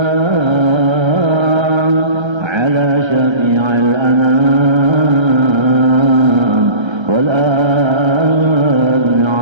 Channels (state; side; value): late; left; 1.3 ms